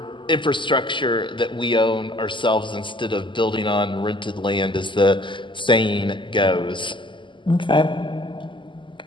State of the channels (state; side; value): late; right; 0.24 ms